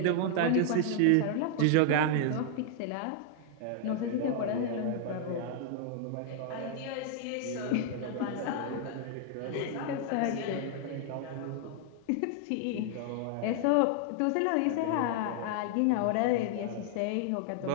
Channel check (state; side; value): different; both; correlation 0.00